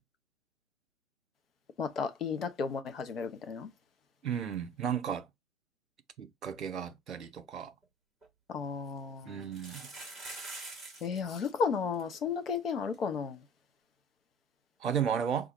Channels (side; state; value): both; normal; correlation 0.44